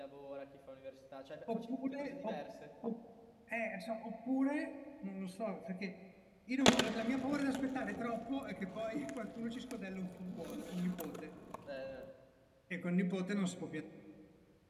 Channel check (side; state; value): both; identical; correlation 1.00